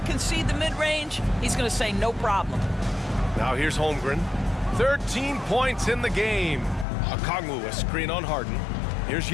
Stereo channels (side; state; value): right; drops out; at 6.9 s